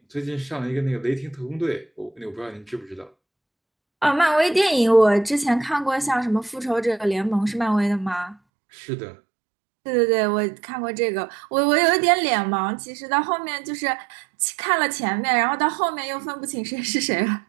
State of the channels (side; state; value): left; drops out; at 8.3 s